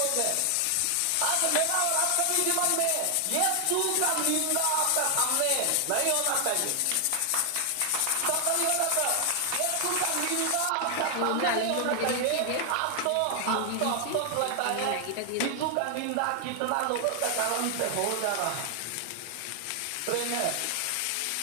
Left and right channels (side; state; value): both; different; correlation 0.00